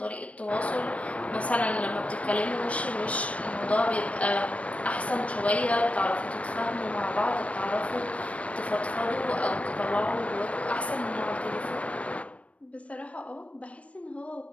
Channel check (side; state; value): right; late; 0.064 ms